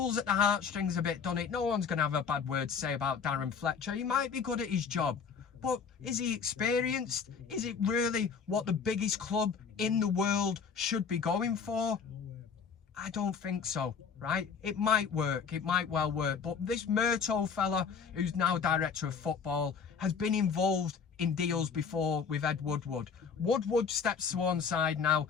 at the heartstrings a bit, doesn't it? No one's going to have a bad word to say about Darren Fletcher. He might be good at his job, but is he experienced? Is it really what the biggest club in the world should be going for? I don't think so, right? It might work. It might well work. But this Murto fella, who's now director of football, has been involved in deals before with Ed Woodward. Woodward steps to one side now.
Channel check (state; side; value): quieter; right; 6.1 dB